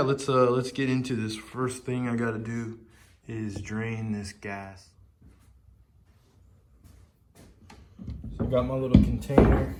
let's get into this. First thing I gotta do is drain this gas. So I got my little container.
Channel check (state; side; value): identical; both; correlation 1.00